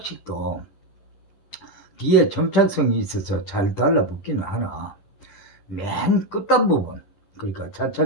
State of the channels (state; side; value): late; right; 10 ms